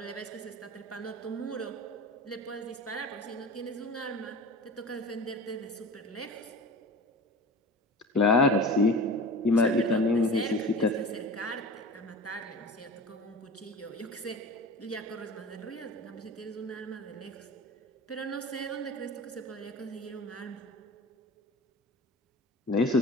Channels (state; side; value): normal; both; correlation 0.35